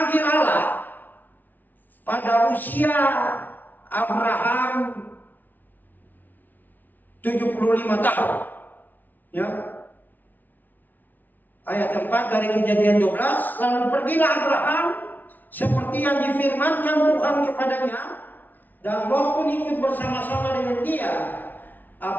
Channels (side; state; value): right; late; 0.083 ms